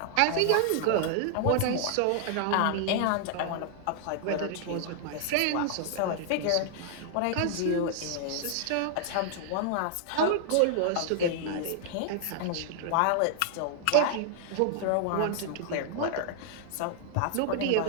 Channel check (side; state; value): both; different; correlation -0.01